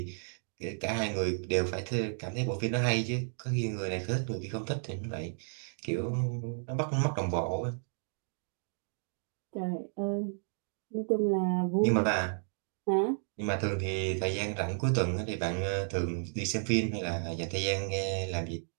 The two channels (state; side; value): silent; left; digital silence